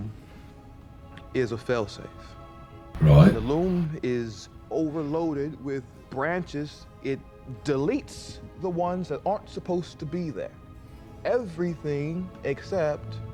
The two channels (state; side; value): identical; both; correlation 1.00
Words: is a failsafe. Right. When the loom is overloaded with branches, it deletes the ones that aren't supposed to be there. Everything except